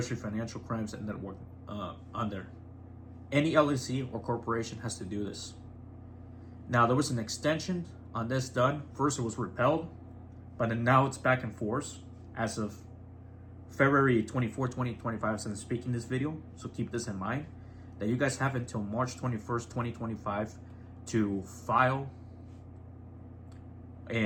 Financial Crimes and Network on there. Any LLC or corporation has to do this. Now, there was an extension on this done. First, it was repealed, but then now it's back in force as of February 24, 2025, since I'm speaking this video. So keep this in mind, that you guys have until March 21st, 2025 to file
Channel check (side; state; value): both; identical; correlation 1.00